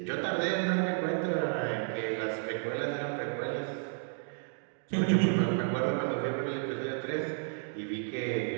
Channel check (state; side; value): silent; left; 56 dB below the other